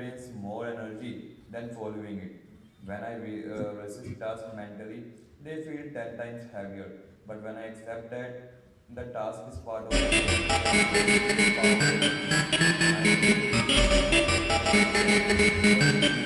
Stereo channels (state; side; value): identical; both; correlation 1.00